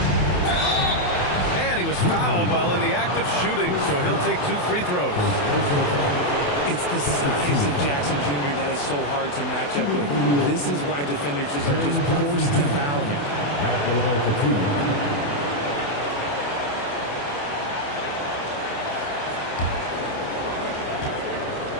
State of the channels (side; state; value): right; late; 28 ms